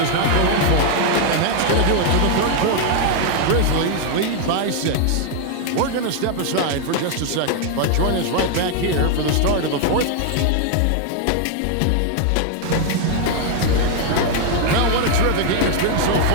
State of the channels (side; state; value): both; different; correlation 0.00